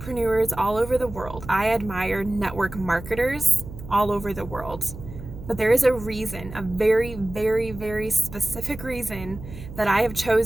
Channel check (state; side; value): noise; right; hum, 13 dB below the sound